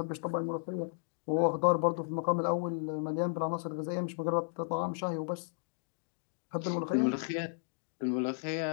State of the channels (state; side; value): silent; right; digital silence